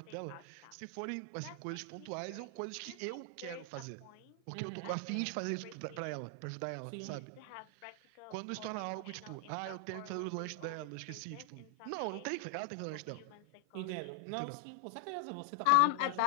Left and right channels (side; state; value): both; different; correlation 0.00